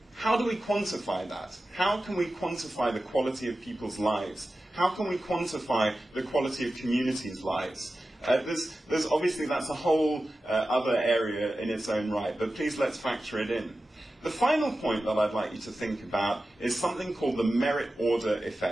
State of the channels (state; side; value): normal; both; correlation 0.94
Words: How do we quantify that? How can we quantify the quality of people's lives? How can we quantify the quality of communities' lives? There's obviously, that's a whole other area in its own right, but please let's factor it in. The final point that I'd like you to think about is something called the merit order